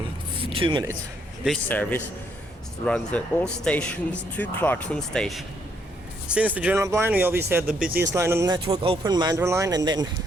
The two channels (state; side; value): normal; both; correlation 0.72